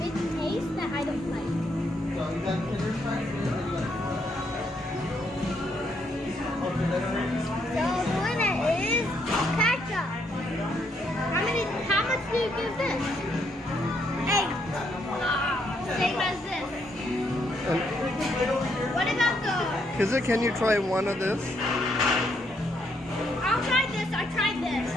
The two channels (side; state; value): both; normal; correlation 0.74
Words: taste that I don't like. So the winner is ketchup. How much do you give this? 8. Same as this. What about the... Kizza, can you try one of this? I'll try this. I tried this.